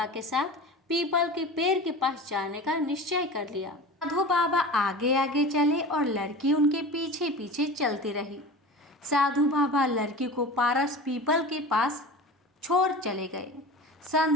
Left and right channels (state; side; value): normal; both; correlation 0.34